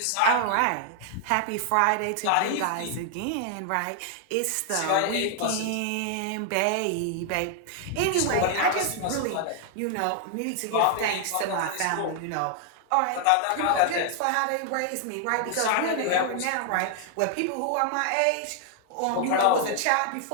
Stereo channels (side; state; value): both; different; correlation 0.00